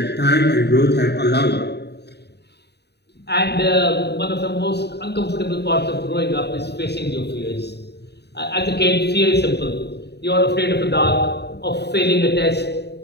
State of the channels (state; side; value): late; right; 0.48 ms